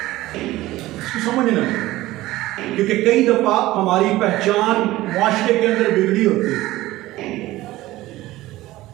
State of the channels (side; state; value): left; quieter; 17.1 dB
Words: समझना, क्योंकि कई दफा हमारी पहचान मुआशरे के अंदर बिगड़ी होती है,